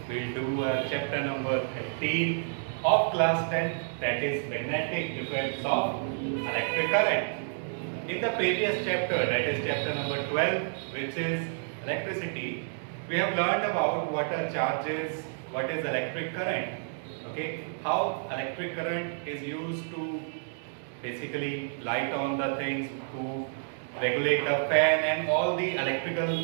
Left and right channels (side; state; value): left; silent; digital silence